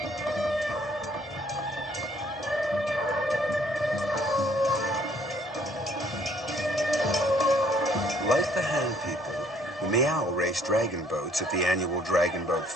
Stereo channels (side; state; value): both; normal; correlation 0.63